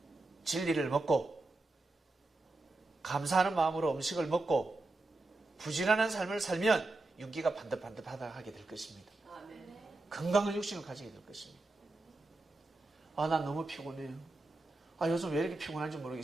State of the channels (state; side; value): quieter; left; 3.0 dB